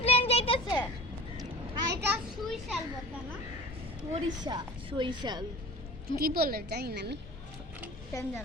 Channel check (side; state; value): both; normal; correlation 0.39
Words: প্লেন যাইতেছে। আর এটা সুইশাল বলতে না, সরিষাল কি বলে জানি না আমি, কেন